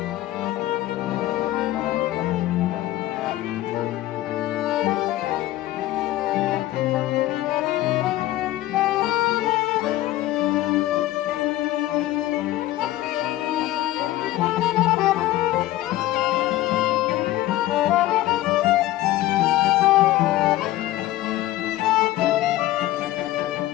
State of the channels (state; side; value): quieter; right; 15.5 dB